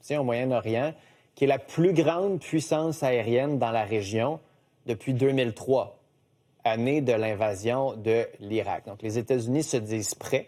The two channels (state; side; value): identical; both; correlation 1.00